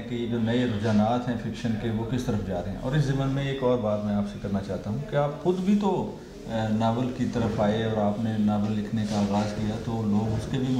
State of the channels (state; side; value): identical; both; correlation 1.00